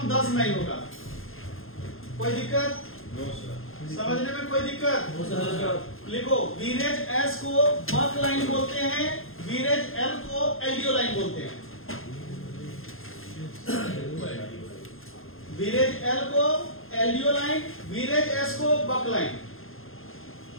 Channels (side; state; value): right; late; 0.60 ms